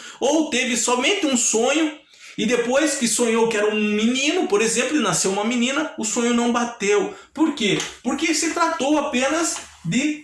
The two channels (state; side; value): identical; both; correlation 1.00